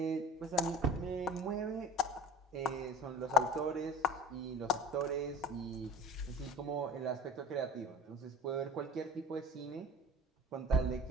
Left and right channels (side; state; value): both; normal; correlation 0.42